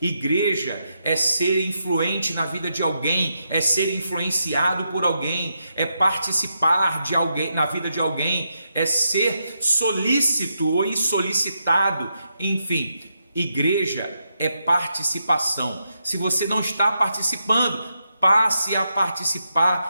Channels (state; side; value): inverted; both; correlation -0.83